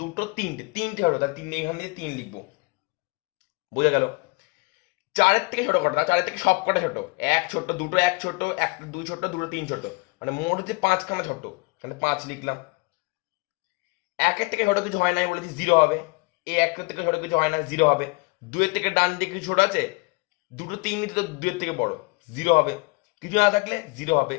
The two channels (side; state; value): right; quieter; 27.2 dB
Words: তিনটে হলো, তার 3 এখান দিয়ে 3 লিখবো। বোঝা গেল? 4 থেকে ছোট কটা, 4 থেকে সব কটা ছোট, 1 ছোট, দুটো 1 ছোট, 1 2 ছোট, দুটো 3 ছোট, মানে মোট হচ্ছে 5খানা ছোট, এখানে 5 লিখলাম। একের থেকে ছোট কিছু হয় না, আমি বলেছি 0 হবে। এই একের থেকে ছোট কিছু হয় না, 0 হবে। 2-এর থেকে ডান দিকে কিছু ছোট আছে, 2-3 তো 2-এর থেকে বড়, 0 হবে। কিছু না থাকলে 0 হবে।